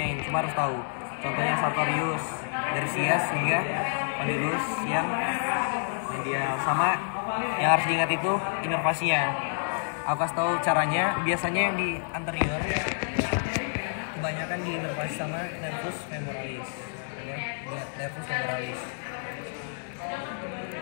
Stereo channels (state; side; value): silent; right; digital silence